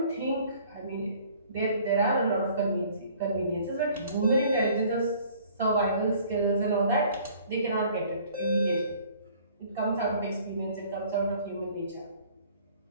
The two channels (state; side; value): inverted; both; correlation -0.54